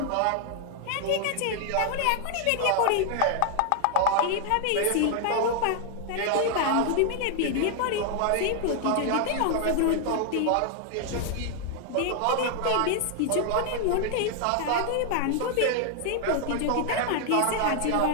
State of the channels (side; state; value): both; different; correlation 0.00